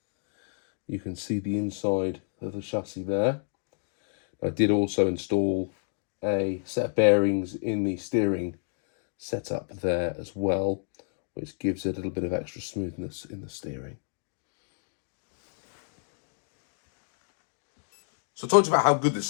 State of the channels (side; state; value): right; silent; digital silence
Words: you can see the inside of the chassis there. I did also install a set of bearings in the steering setup there as well, which gives it a little bit of extra smoothness in the steering. So talking about how good